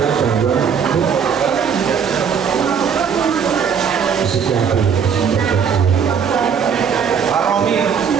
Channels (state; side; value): quieter; left; 7.0 dB